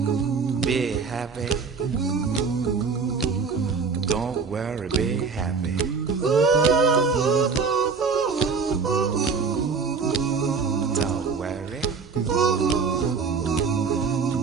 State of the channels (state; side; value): quieter; left; 5.1 dB